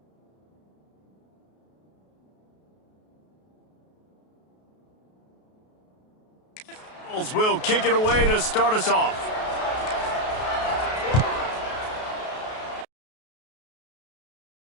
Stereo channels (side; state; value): right; late; 33 ms